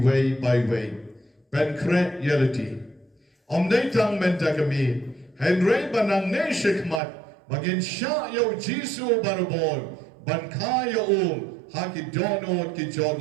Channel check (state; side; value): drops out; left; at 7.0 s